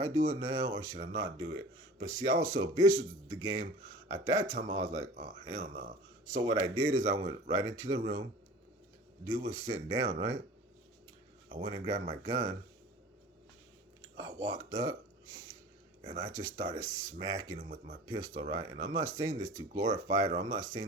do it now or should I not do it? But see, I was so vicious with the game. At that time, I was like, oh hell no. So what I did is I went right into the room. Dude was sitting down, right? I went and grabbed my gun. I walked up and I just started smacking him with my pistol, right? And I'm not saying this to glorify it, or I'm not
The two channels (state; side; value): normal; both; correlation 0.42